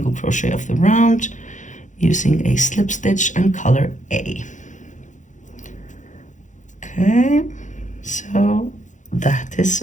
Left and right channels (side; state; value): right; late; 0.36 ms